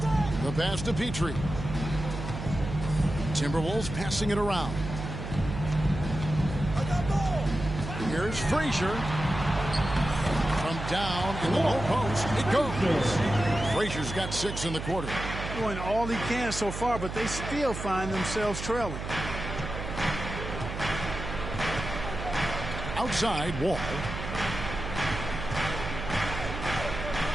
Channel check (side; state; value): right; noise; hum, 7 dB below the sound